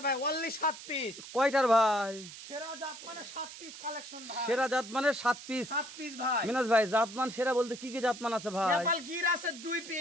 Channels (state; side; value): noise; right; hiss, 14 dB below the sound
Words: ভাই, অনলি 7 পিস। কয়টার ভাই? সেরা জাত মানে 7 পিস কালেকশন ভাই। সেরা জাত মানে 7 পিস। 7 পিস ভাই। মিনাজ ভাই জাতমান সেরা বলতে কি কি জাতমান আছে ভাই? নেপাল গির আছে 2